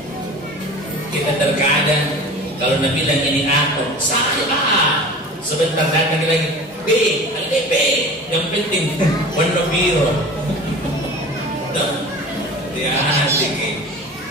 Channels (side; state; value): both; normal; correlation 0.38